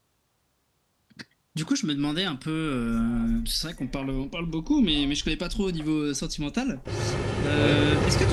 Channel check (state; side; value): identical; both; correlation 1.00